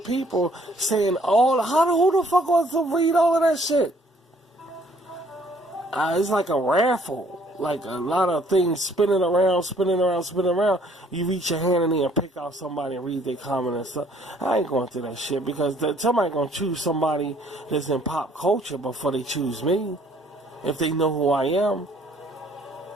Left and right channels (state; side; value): normal; both; correlation 0.61